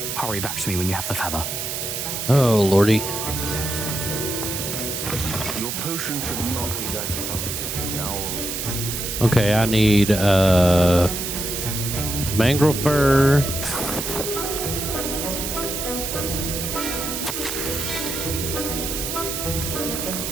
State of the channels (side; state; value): right; noise; hiss, 4 dB below the sound